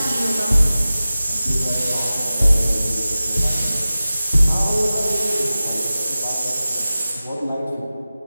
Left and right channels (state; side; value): inverted; both; correlation -0.95